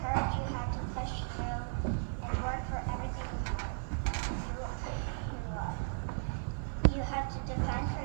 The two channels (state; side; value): silent; left; digital silence